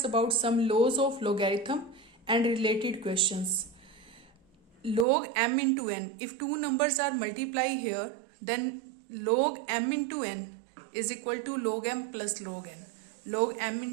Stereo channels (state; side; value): drops out; left; at 5.1 s